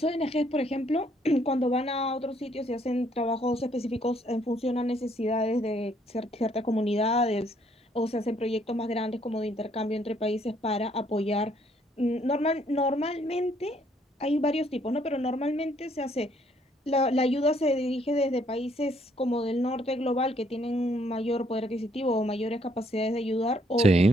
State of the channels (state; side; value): normal; both; correlation 0.67